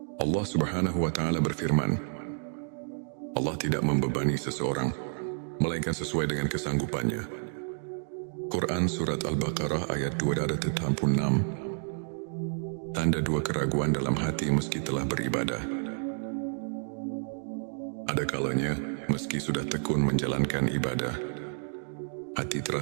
Allah Subhanahu wa Ta'ala berfirman, Allah tidak membebani seseorang melainkan sesuai dengan kesanggupannya. Quran Surat Al-Baqarah ayat 286. Tanda 2, keraguan dalam hati meski telah beribadah. Ada kalanya, meski sudah tekun menjalankan ibadah, hati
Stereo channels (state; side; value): silent; left; 58 dB below the other